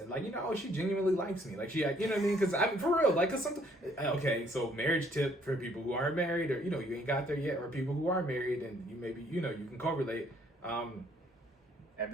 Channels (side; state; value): both; normal; correlation 0.64